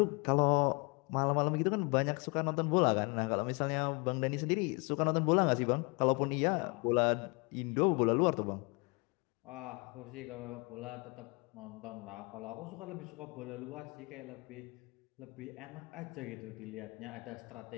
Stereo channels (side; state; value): right; quieter; 29.9 dB